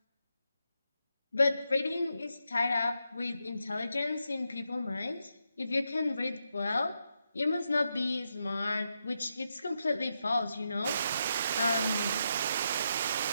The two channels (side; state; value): both; inverted; correlation -0.84